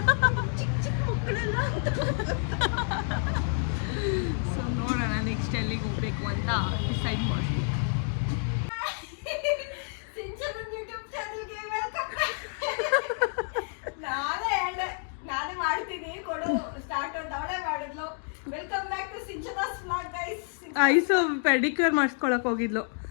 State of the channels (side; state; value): right; silent; 59 dB below the other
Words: ಚಿಕ್ಕ ಮಕ್ಕಳೆಲ್ಲ. ಸೊ ನೋಡೋಣ ನೆಕ್ಸ್ಟ್ ಎಲ್ಲಿಗೆ ಹೋಗ್ಬೇಕು ಅಂತ ಡಿಸೈಡ್ ಮಾಡ್ತೀವಿ. ನಾನೇ ಮಾಡ್ತೀನಿ ಕೊಡು ಸ್ಟಾರ್ಟ್ ಅಂತ ಅವಳೇ ಮಾಡಿದ್ಲು. Welcome back to Sinchana's vlog guys. Aishu pedicure ಮಾಡಿಸ್ಕೊಳಕ್ ಹೋಗಿದ್ಲು.